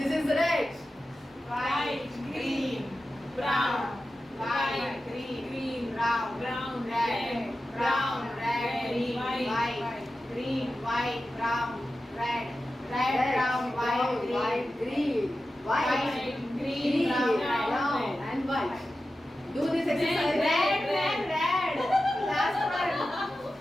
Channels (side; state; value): both; normal; correlation 0.93